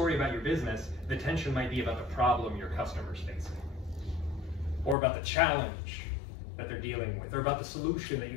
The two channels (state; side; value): drops out; right; at 5.0 s